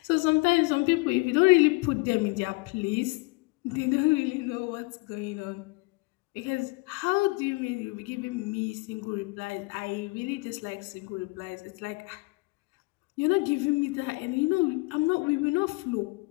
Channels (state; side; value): quieter; right; 25.9 dB